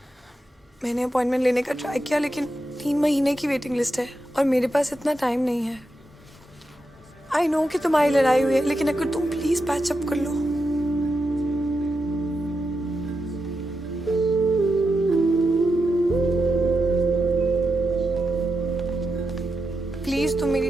मैंने अपॉइंटमेंट लेने का ट्राई किया लेकिन 3 महीने की वेटिंग लिस्ट है और मेरे पास इतना टाइम नहीं है। आई नो कि तुम्हारी लड़ाई हुई है लेकिन अगर तुम प्लीज पैच अप कर लो। प्लीज तुम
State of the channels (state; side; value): normal; both; correlation 0.87